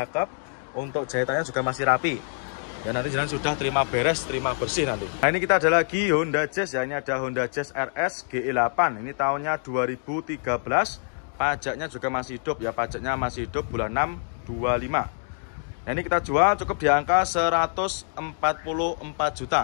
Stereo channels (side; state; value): right; silent; 61 dB below the other